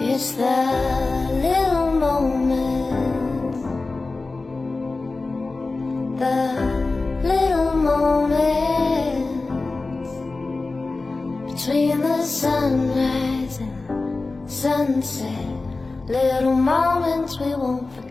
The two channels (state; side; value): quieter; right; 3.5 dB